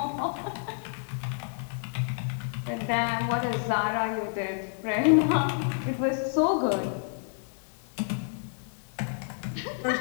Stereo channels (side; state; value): right; silent; digital silence